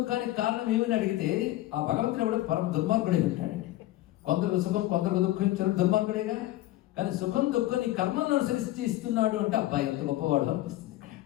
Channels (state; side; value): quieter; right; 16.0 dB